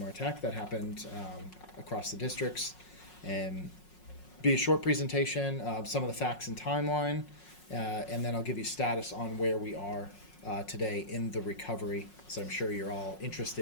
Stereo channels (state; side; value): late; right; 5.5 ms